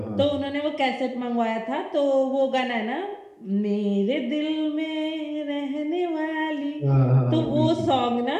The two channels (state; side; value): identical; both; correlation 1.00